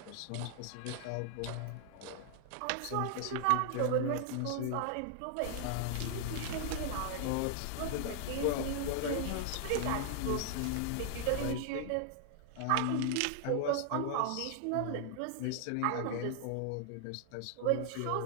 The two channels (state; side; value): different; both; correlation 0.00